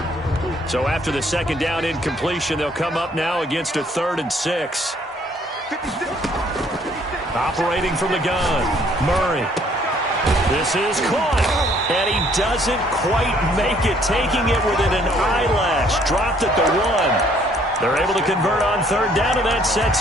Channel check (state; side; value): normal; both; correlation 0.63